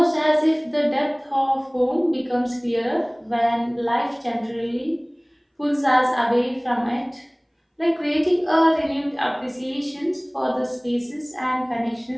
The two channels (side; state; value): both; identical; correlation 1.00